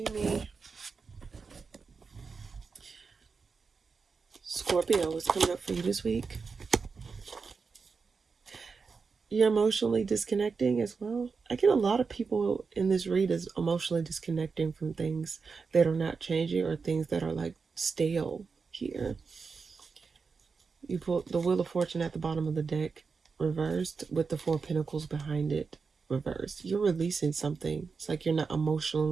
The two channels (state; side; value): quieter; left; 5.0 dB